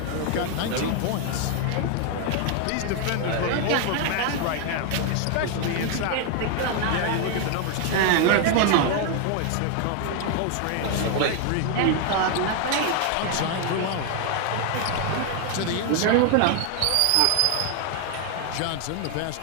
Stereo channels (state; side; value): different; both; correlation 0.00